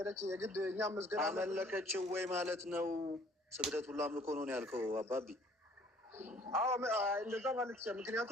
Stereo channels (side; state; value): both; normal; correlation 0.57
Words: የግድ እኛም መስገድ አመለከችው ወይ ማለት ነው? ስግደት ሁሉ አምልኮ ነው ያልከው አባቢ? አዎ እንደዛ ማለት ይችላል።